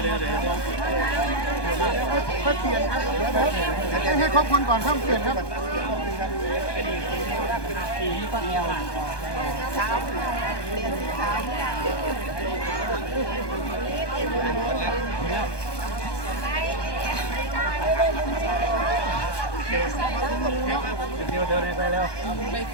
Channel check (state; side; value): late; right; 1.2 ms